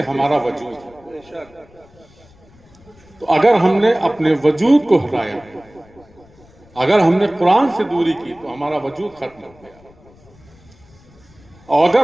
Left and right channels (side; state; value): left; noise; rumble, 27 dB below the sound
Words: ہمارا وجود ہے۔ تو اگر ہم نے اپنے وجود کو ہٹایا، اگر ہم نے قرآن سے دوری کی تو ہمارا وجود ختم ہو گیا، اور اگر